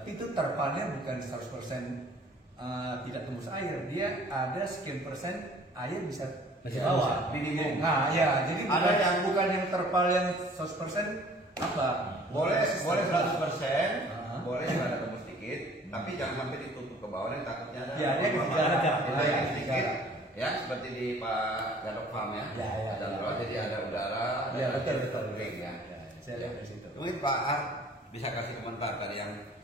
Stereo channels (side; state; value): both; normal; correlation 0.52